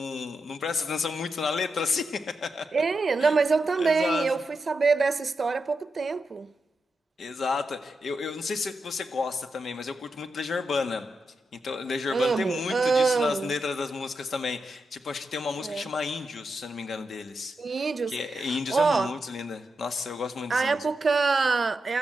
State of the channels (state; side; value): normal; both; correlation 0.87